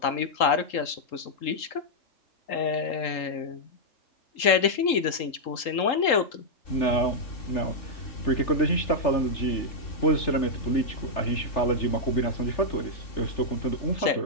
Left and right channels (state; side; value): late; right; 3.8 ms